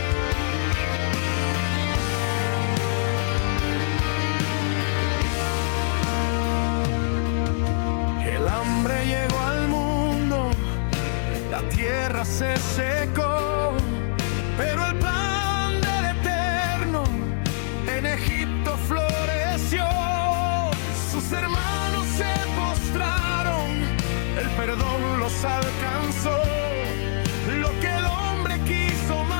El hambre llegó al mundo, la tierra se secó, pero el plan del Eterno en Egipto floreció. Sus hermanos se postraron, el perdón los alcanzó. Lo que el hombre quiso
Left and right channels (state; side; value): silent; right; digital silence